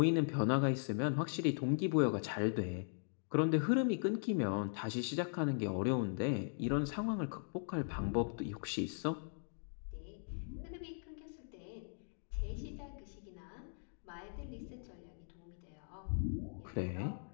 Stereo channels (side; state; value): right; silent; digital silence